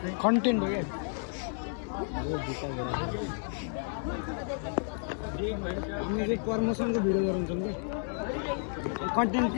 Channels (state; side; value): silent; right; 57 dB below the other